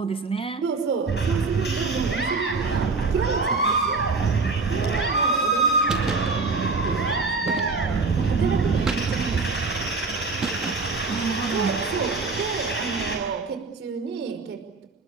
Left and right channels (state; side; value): quieter; left; 4.0 dB